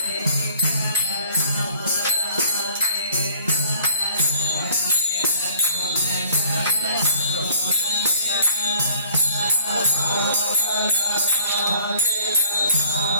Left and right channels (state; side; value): inverted; both; correlation -0.54